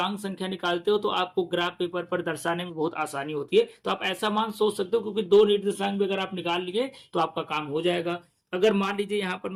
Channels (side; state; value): both; identical; correlation 1.00